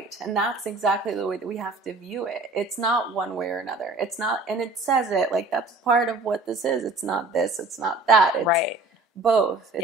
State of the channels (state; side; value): quieter; left; 3.2 dB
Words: And that's exactly the way that we have to view it. It's not one way or another. It's not, and it says it, like, that's part of what this is. It's not this, it's not that. It's right. both.